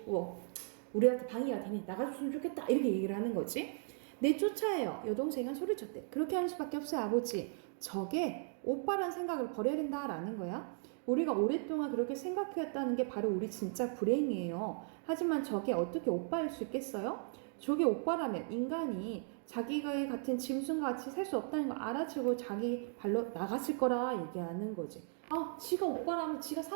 우리한테 방해가 되니 나가줬으면 좋겠다 이렇게 얘기를 하는 거지. 내쫓아요. 여동생은 소리쳤대. 그렇게 하는 수밖에 없어요, 아버지. 저게 오빠란 생각을 버려야 된다라는 거야. 우리가 오랫동안 그렇게 생각해왔다는 게 바로 우리 진짜 불행이에요. 하지만 저게 어떻게 오빠일 수 있겠어요? 저게 오빠라면 인간이 자기가 같은 짐승과 같이 살 수 없다는 걸 알아채고 자기 발로 나갔을 거라 얘기하는 거지. 지가 오빠라면, 지가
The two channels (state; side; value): silent; left; 53 dB below the other